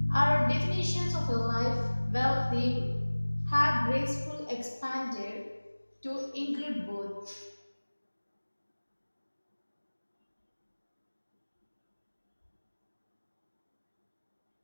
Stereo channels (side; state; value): both; inverted; correlation -1.00